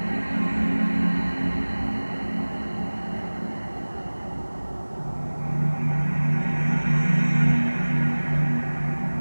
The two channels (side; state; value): both; inverted; correlation -1.00